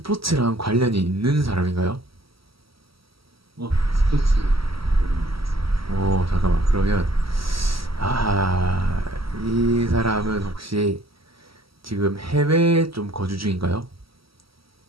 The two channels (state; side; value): late; left; 0.75 ms